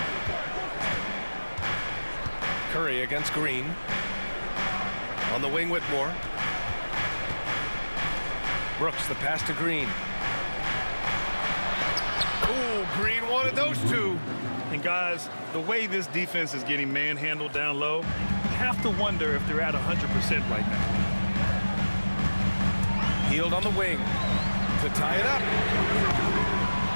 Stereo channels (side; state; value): both; inverted; correlation -1.00